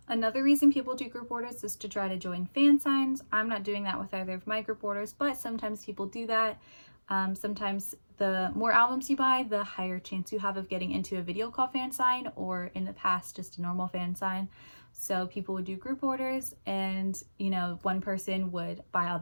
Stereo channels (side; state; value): both; inverted; correlation -1.00